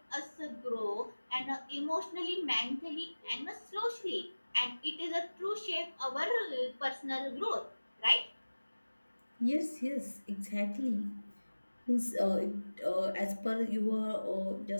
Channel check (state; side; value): inverted; both; correlation -1.00